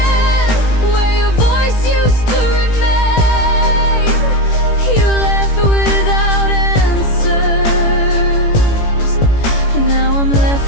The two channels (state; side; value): late; right; 18 ms